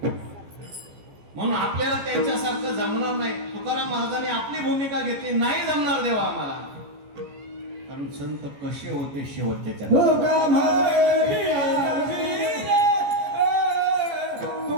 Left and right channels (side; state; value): left; late; 14 ms